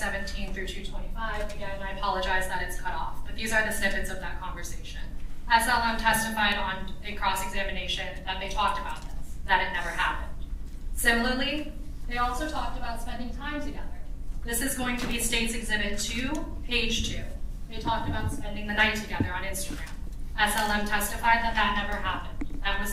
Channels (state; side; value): identical; both; correlation 1.00